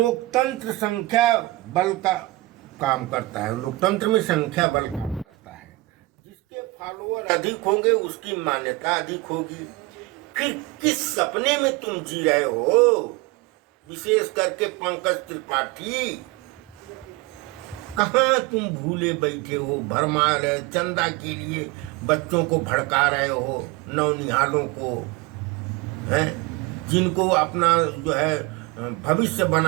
संख्या बल का काम करता है। लोकतंत्र में संख्या बल करता है। जिसके फॉलोअर अधिक होंगे उसकी मान्यता अधिक होगी। फिर किस सपने में तुम जी रहे हो? विशेष करके पंकज त्रिपाठी, कहाँ तुम भूले बैठे हो? भरमार है। चंदा के लिए बच्चों को भड़का रहे हो, नौनिहालों को, हैं जिनको अपना जो है भविष्य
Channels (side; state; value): left; quieter; 20.5 dB